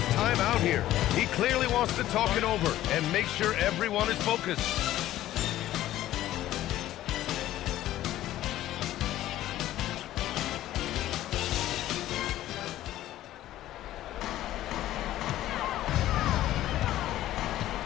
timeout here. He clearly wants to talk it over and make sure everyone is focused.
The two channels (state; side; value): quieter; right; 14.0 dB